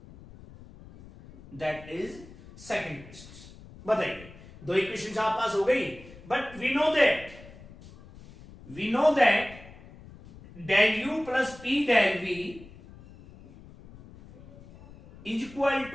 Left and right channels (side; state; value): left; noise; rumble, 19 dB below the sound